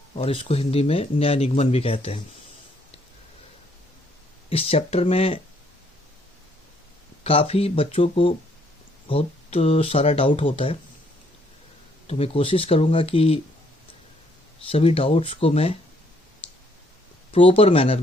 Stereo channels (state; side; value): normal; both; correlation 0.68